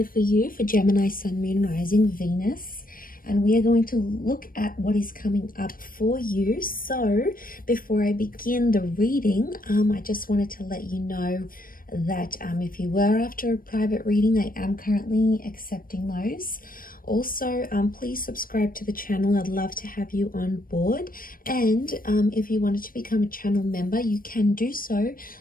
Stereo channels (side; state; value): right; late; 0.41 ms